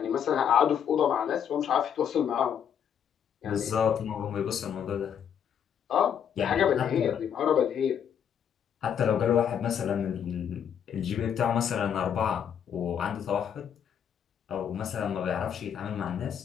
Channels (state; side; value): quieter; right; 8.4 dB